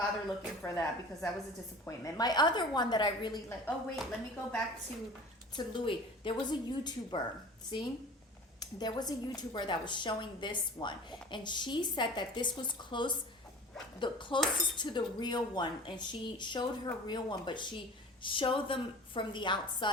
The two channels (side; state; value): both; normal; correlation 0.40